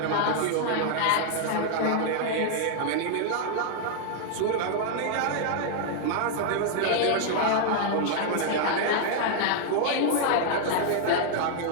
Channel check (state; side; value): different; both; correlation -0.01